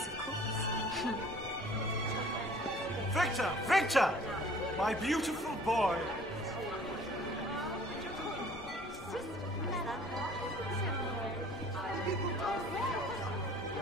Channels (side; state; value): left; noise; rumble, 18 dB below the sound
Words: Victor! My beautiful boy!